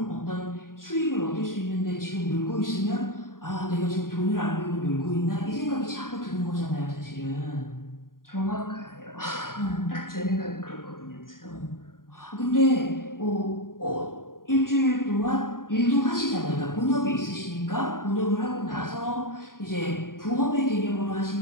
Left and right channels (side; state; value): right; late; 0.91 ms